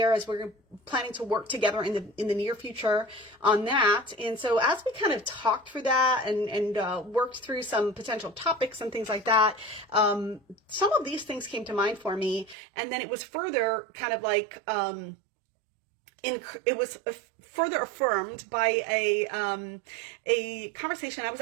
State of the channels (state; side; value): drops out; left; at 12.6 s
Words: as we're planning to work together in the near future on that. And so as we kind of talked through that and worked through some potential topics and things like that, some of these things came to mind for me, and then it was further kind of like it was further affirmed by a conversation. I was